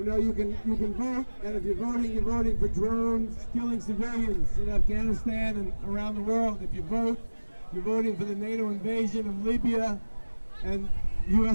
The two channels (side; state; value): both; inverted; correlation -1.00